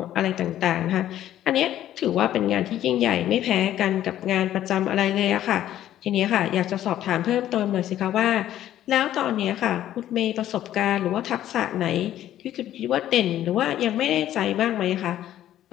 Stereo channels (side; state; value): right; quieter; 12.3 dB